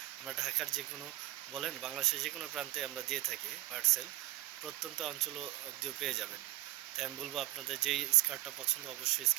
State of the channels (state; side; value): quieter; left; 17.1 dB